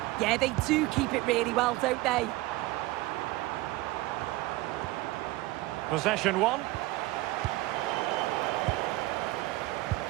Yeah, they do keep it really well, don't they? Possession 1.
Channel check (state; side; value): quieter; left; 19.1 dB